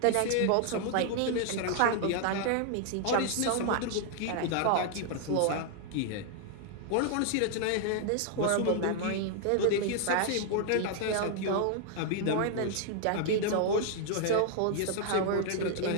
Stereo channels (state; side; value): different; both; correlation 0.00